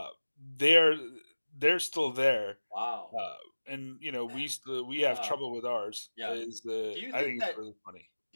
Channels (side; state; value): both; inverted; correlation -1.00